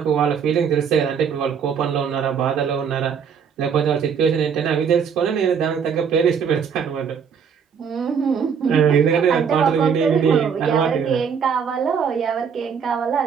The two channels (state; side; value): quieter; left; 6.9 dB